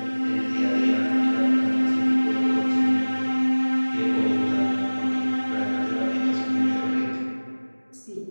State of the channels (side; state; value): both; inverted; correlation -1.00